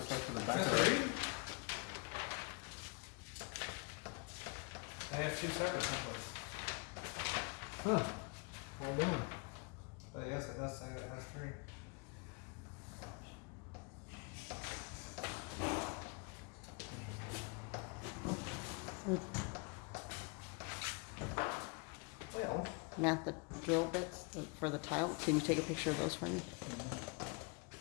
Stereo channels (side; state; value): right; quieter; 31.9 dB